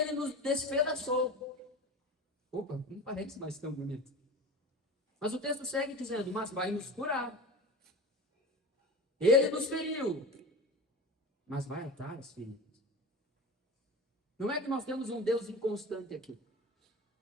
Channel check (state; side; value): normal; both; correlation 0.32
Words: nos despedaçou. Opa, não parece mais tão bonito. Mas o texto segue dizendo, mas vai nos curar. Ele nos feriu, mas vai atar as feridas. Não é que nós temos um Deus inconstante aqui,